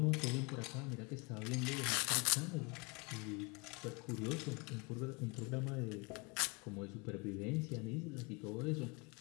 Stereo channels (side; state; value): right; quieter; 29.6 dB